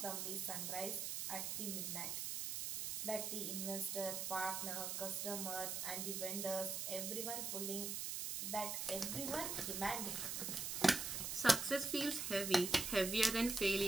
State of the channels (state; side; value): noise; right; hiss, 2 dB below the sound